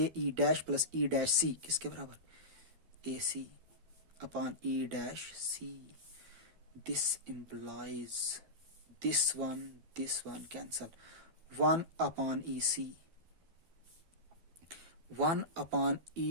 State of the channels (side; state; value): left; late; 12 ms